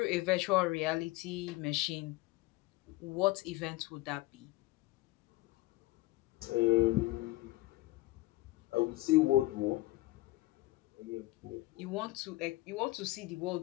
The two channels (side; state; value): right; quieter; 19.1 dB